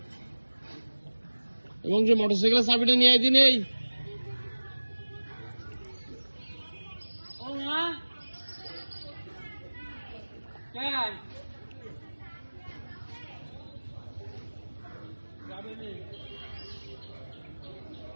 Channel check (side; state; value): both; inverted; correlation -1.00